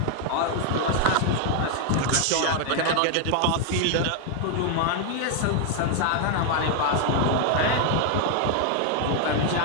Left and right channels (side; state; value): both; different; correlation 0.00